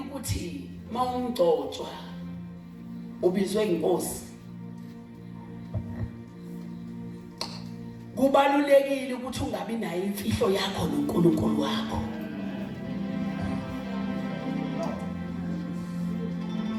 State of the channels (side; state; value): both; identical; correlation 1.00